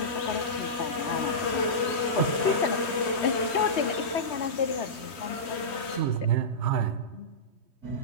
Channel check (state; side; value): late; right; 3.2 ms